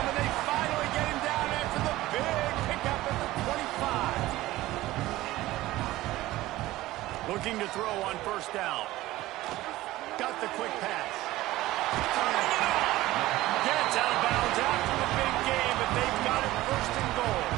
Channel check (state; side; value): quieter; left; 17.0 dB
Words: and they finally get him down after the big pickup at the 25. Looking to throw on first down. Got the quick pass. Gets out of bounds after the big game, but they've got it first and goal.